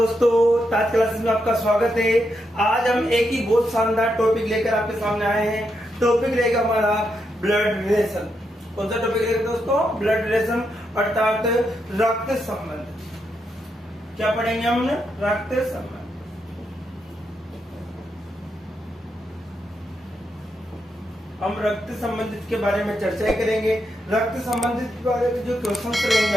ताज classes में आपका स्वागत है। आज हम एक ही बहुत शानदार टॉपिक लेकर आपके सामने आए हैं। टॉपिक रहेगा हमारा ब्लड रिलेशन। कौन सा टॉपिक रहेगा दोस्तों? ब्लड रिलेशन अर्थात रक्त संबंध। क्या पढ़ेंगे हम? रक्त संबंध। हम रक्त संबंधित के बारे में चर्चा करेंगे। रक्त संबंधित के बारे में जो क्वेश्चन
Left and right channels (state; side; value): normal; both; correlation 0.82